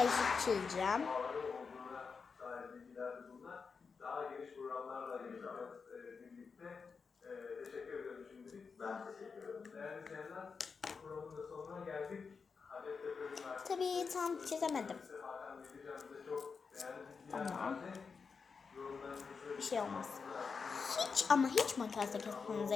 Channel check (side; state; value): right; quieter; 5.3 dB